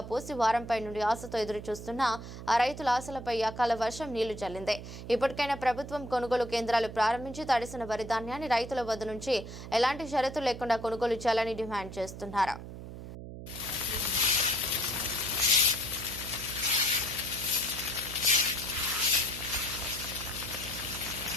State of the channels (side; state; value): right; noise; hum, 11 dB below the sound